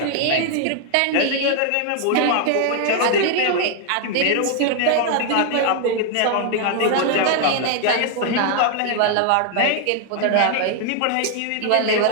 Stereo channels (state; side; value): different; both; correlation 0.00